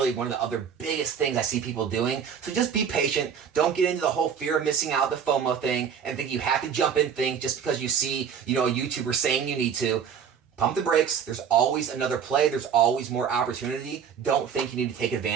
one of the other biggest things I see people doing. So just be patient. Don't get into the whole fear of missing out, the FOMO thing, and think you have to jump in things just because you see a YouTuber saying you need to. Pump the brakes. There's always another play. There's always more opportunity. Don't think you need to take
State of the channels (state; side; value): quieter; left; 7.5 dB